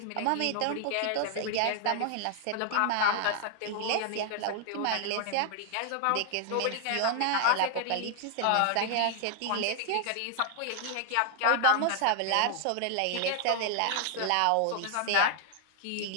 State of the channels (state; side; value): different; both; correlation 0.00